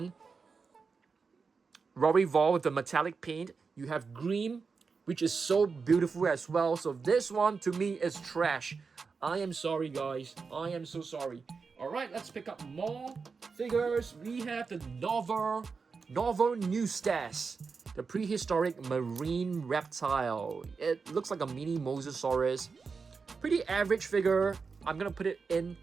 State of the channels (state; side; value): quieter; left; 5.0 dB